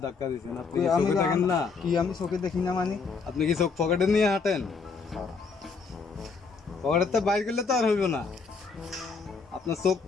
ধাক্কা দিয়েছেন। আপনি তুই চোখে দেখেন না? কি আমি চোখে দেখি না মানে? আপনি কি চোখ পকেটে নিয়ে হাঁটেন? পকেটে তো বাইর করলে তো আর হইব না, আপনার চোখ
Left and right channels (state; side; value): quieter; right; 4.8 dB